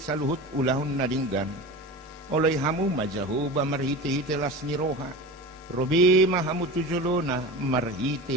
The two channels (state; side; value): normal; both; correlation 0.30